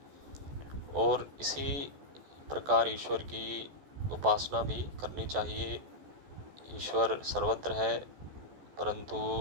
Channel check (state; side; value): late; left; 14 ms